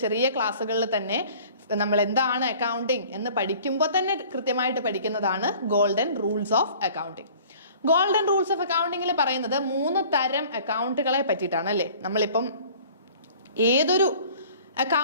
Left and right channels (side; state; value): both; inverted; correlation -0.49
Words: ചെറിയ ക്ലാസ്സുകളിൽ തന്നെ നമ്മൾ എന്താണ് അക്കൗണ്ടിങ് എന്ന് പഠിക്കുമ്പോൾ തന്നെ കൃത്യമായിട്ട് പഠിക്കുന്നതാണ് golden rules of accounting. Golden rules of അക്കൗണ്ടിങ്ങിൽ പറയുന്നത് 3 തരം അക്കൗണ്ടുകളെ പറ്റിയിട്ടാണ് അല്ലേ. നമ്മളിപ്പം ഏതൊരു